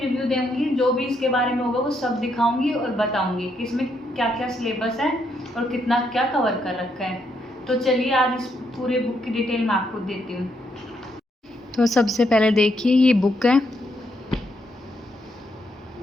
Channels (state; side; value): normal; both; correlation 0.77